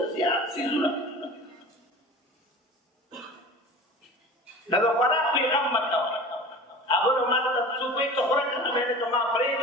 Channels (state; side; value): normal; both; correlation 0.38